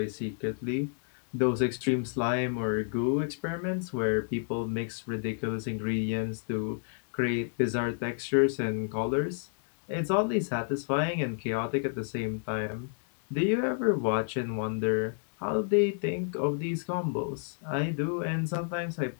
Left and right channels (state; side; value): silent; right; digital silence